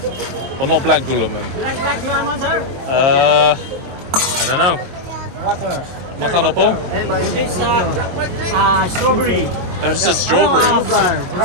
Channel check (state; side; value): late; left; 23 ms